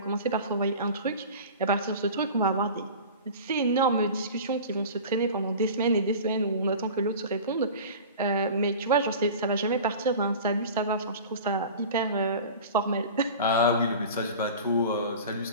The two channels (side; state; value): both; inverted; correlation -0.37